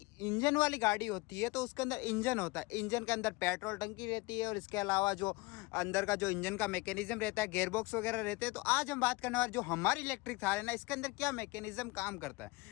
इंजन वाली गाड़ी होती है तो उसके अंदर इंजन होता है, इंजन के अंदर पेट्रोल टंकी रहती है और इसके अलावा जो अंदर का जो इंजन का मैकेनिज्म रहता है, गेयर बॉक्स वगैरह रहते हैं। तो आज हम बात करने वाले जो हमारी इलेक्ट्रिक थार है ना, इसके अंदर क्या मैकेनिज्म काम करता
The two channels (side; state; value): right; quieter; 23.8 dB